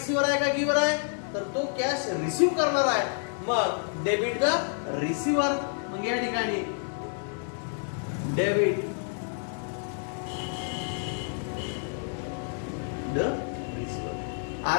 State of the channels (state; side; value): silent; right; 59 dB below the other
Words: आहे का गिव्हर आहे? तर तो कॅश रिसिव्ह करणार आहे. मग डेबिट द रिसिव्हर. मग या ठिकाणी डेबिट द रिसिव्हर.